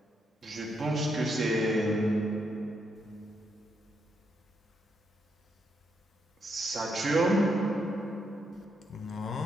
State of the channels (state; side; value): normal; both; correlation 0.79